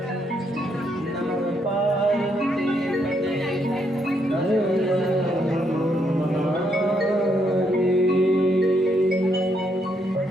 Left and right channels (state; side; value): normal; both; correlation 0.75